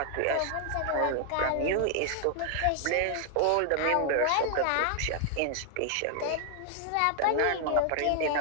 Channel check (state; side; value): different; both; correlation 0.00